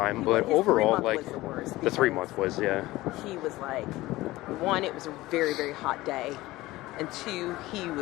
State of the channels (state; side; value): quieter; right; 18.3 dB